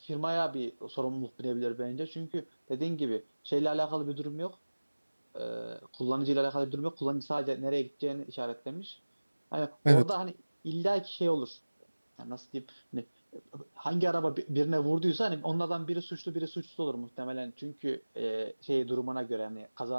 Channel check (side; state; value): both; inverted; correlation -1.00